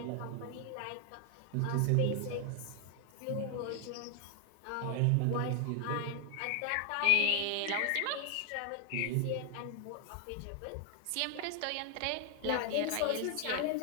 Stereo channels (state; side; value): different; both; correlation 0.00